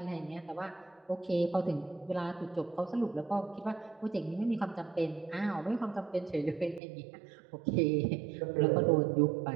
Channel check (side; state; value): left; drops out; at 6.8 s